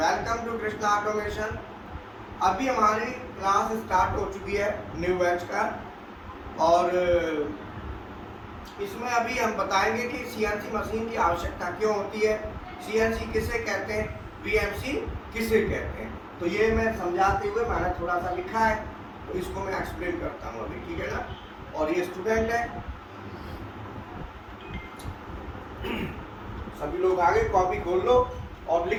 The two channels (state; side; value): identical; both; correlation 1.00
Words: to Krishna automation. अभी हमारी class start हो चुकी है न्यू बैच का, और इसमें अभी हम बताएंगे कि सीएनसी मशीन की आवश्यकता क्यों होती है, सीएनसी किसे कहते हैं, बीएमसी किसे कहते हैं। तो ये मैं समझाते हुए मैंने थोड़ा सा लिखा है, तो इसको मैं एक्सप्लेन करता हूँ अभी, ठीक है ना। और ये स्टूडेंट है, सभी लोग आगे कॉपी खोल लो और